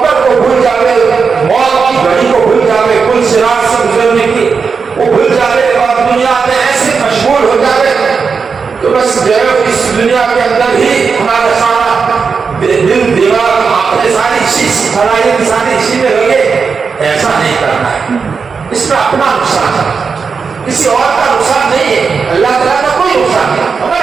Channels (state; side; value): quieter; left; 5.4 dB